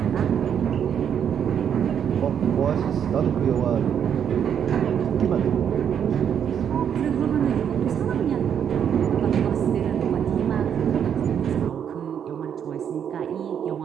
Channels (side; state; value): left; quieter; 8.5 dB